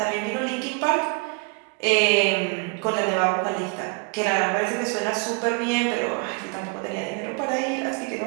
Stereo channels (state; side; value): quieter; left; 31.6 dB